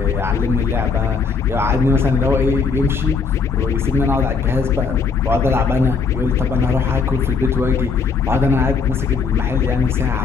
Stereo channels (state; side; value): quieter; right; 5.1 dB